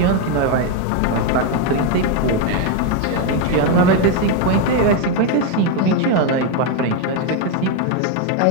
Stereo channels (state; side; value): different; both; correlation 0.02